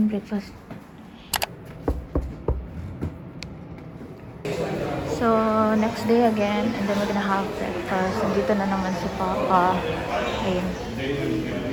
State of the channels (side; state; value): both; identical; correlation 1.00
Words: breakfast. So, next day again, and then we're gonna have breakfast. Nandito na naman si Papa. Ayun.